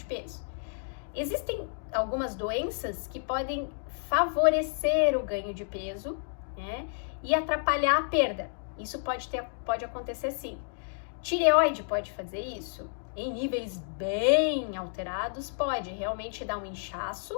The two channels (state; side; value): silent; right; digital silence